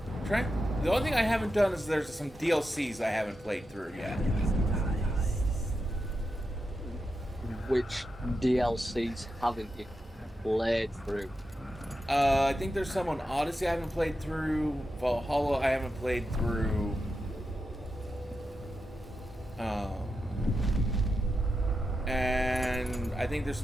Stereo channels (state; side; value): normal; both; correlation 0.88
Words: The only thing I haven't done is there's some DLCs I haven't played through yet. Which DLCs haven't you played through? I think there's some on Odyssey I haven't played through. Valhalla I haven't played through. And I think there's